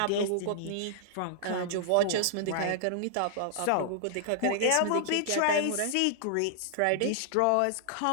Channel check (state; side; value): different; both; correlation -0.01